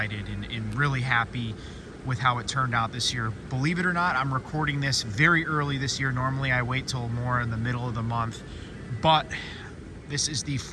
and really happy with how it turned out this year. Believe it or not, I'm recording this very early this year. Normally I wait till more in the middle of the month, but this is the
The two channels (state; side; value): identical; both; correlation 1.00